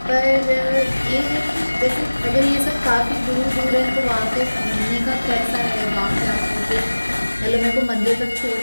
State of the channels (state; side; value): inverted; both; correlation -1.00